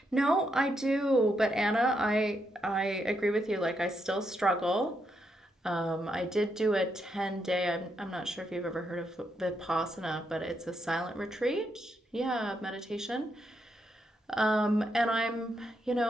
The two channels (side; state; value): both; normal; correlation 0.80